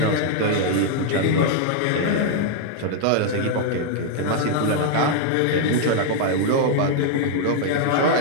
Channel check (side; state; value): both; different; correlation -0.01